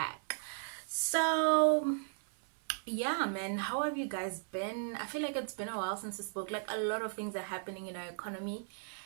So yeah, man, how have you guys been? I feel like it's been a while since we spoke. Like, a lot of things are happening in our economy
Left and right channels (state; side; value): silent; left; 54 dB below the other